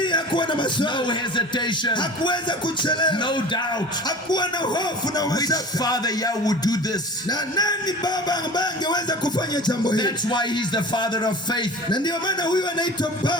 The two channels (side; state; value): both; normal; correlation 0.39